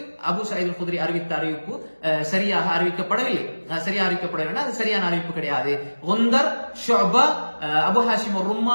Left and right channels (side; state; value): both; inverted; correlation -1.00